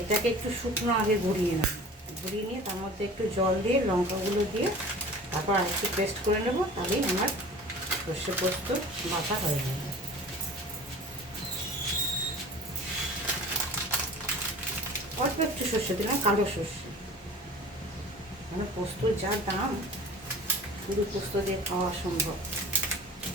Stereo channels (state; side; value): normal; both; correlation 0.41